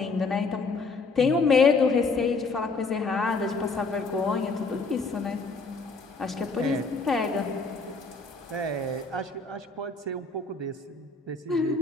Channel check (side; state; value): right; quieter; 3.9 dB